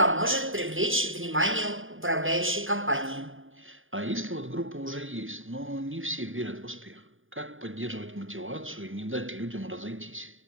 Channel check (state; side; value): late; left; 0.58 ms